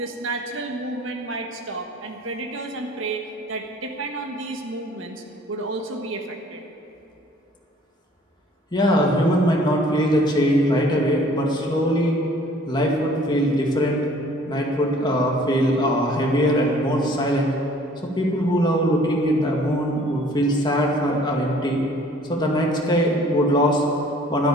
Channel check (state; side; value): normal; both; correlation 0.54